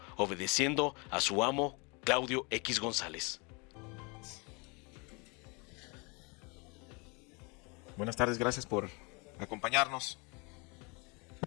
obedeciendo a su amo Claudio X González. Buenas tardes, gracias por acompañarnos.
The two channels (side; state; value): right; quieter; 30.3 dB